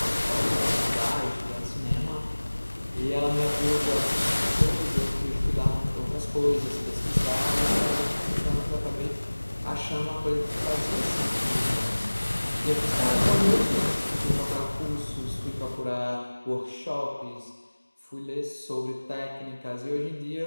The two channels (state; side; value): inverted; both; correlation -1.00